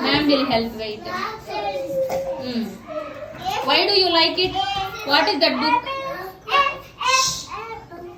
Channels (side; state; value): both; identical; correlation 1.00